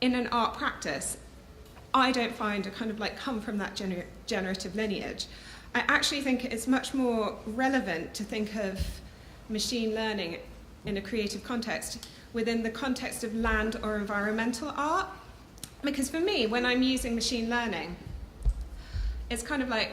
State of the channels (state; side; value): identical; both; correlation 1.00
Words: in an art practice, I don't find a kind of like come from that generative lineage. I actually think it's much more relevant to think of machine learning in a creative context within the context of land or environmental art, Because for me, when I'm using machine learning, it's kind of